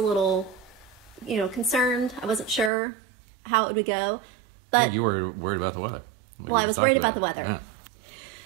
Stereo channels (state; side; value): drops out; left; at 2.7 s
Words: concerned. I wasn't sure how it would go. But you were worried about the weather. I was worried about the weather. Yeah.